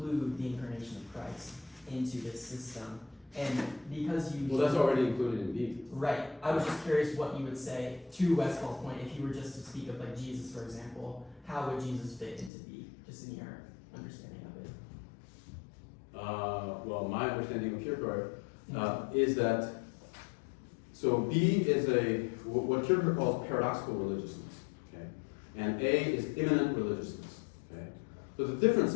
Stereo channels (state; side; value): drops out; right; at 12.5 s